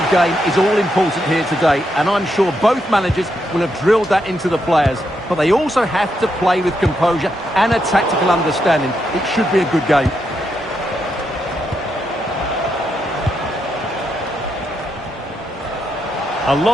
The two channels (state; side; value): normal; both; correlation 0.81